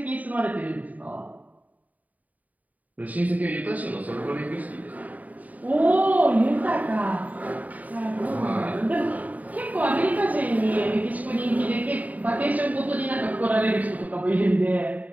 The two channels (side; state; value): left; late; 0.074 ms